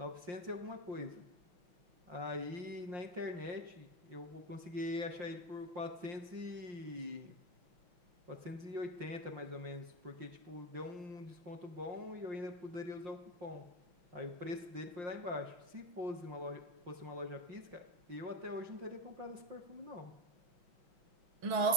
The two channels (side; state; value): left; late; 5.7 ms